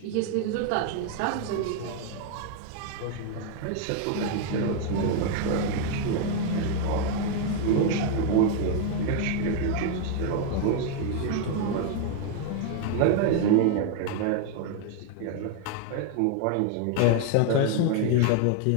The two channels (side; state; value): both; different; correlation 0.01